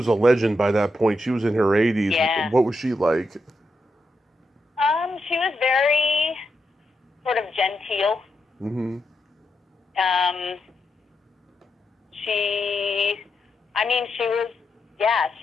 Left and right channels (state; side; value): normal; both; correlation 0.84